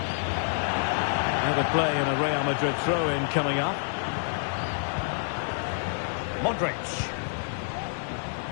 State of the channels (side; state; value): right; silent; 59 dB below the other